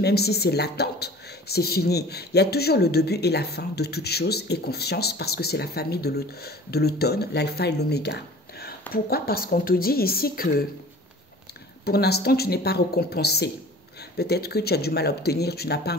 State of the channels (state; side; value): normal; both; correlation 0.45